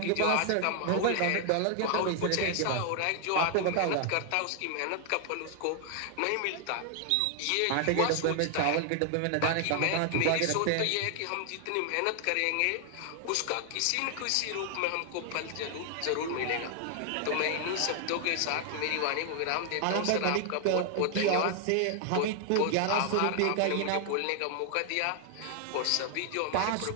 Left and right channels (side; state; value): both; different; correlation 0.00